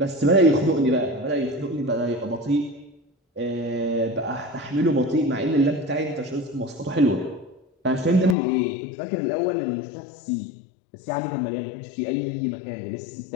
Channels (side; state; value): right; drops out; at 8.3 s